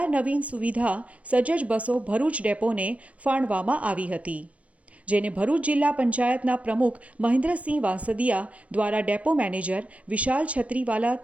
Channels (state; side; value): late; left; 0.065 ms